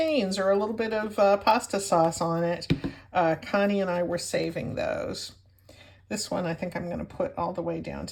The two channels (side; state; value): both; identical; correlation 1.00